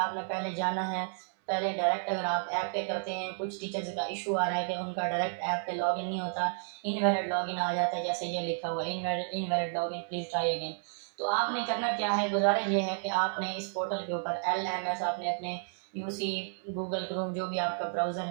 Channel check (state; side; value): silent; left; 57 dB below the other